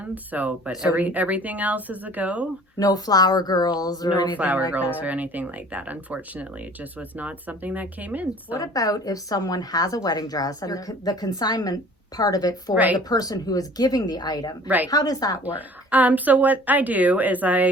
But So everything else is a go. no flower girls or No anything flower like girls that. or anything like that. Unfortunately, it just was not something that came in. So. What about if someone has a wedding dress and the consignment part of it for Right. the person who is giving the item? Right. How does that work? So what I do is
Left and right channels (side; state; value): both; normal; correlation 0.49